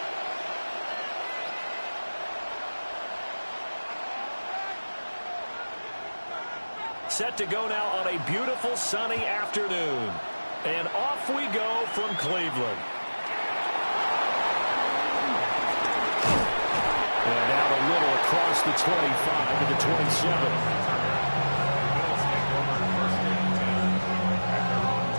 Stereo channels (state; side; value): inverted; both; correlation -1.00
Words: Set to go now on a beautiful sunny afternoon. And off we go from Cleveland. And out a little across the 25 to the 27.